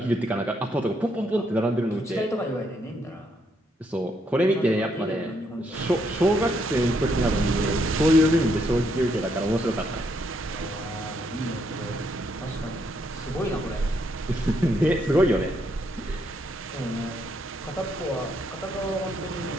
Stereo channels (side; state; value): both; normal; correlation 0.75